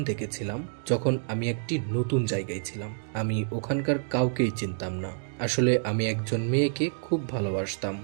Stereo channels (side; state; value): left; silent; digital silence